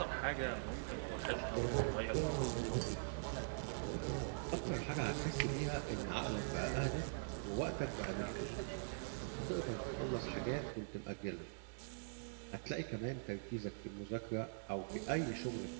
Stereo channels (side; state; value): left; silent; digital silence